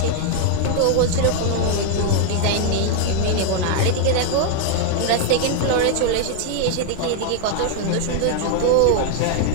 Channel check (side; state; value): both; different; correlation 0.00